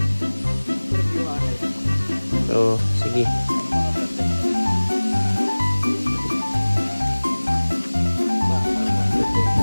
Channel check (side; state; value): both; inverted; correlation -1.00